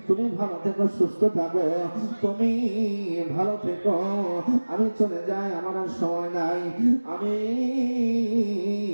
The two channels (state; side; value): inverted; both; correlation -1.00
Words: তুমি ভালো থেকো, সুস্থ থাকো, তুমি ভালো থেকো, আমি চলে যাই, আমার আর সময় নাই, আমি